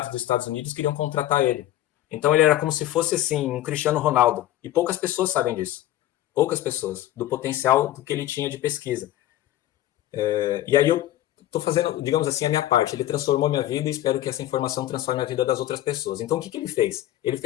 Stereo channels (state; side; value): quieter; right; 14.2 dB